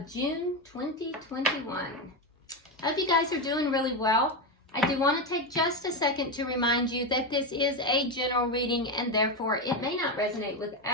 June 2021. I hope you guys are doing really well. I do want to take just a second to remind you that this is a general reading and therefore it may not resonate with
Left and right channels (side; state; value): both; normal; correlation 0.12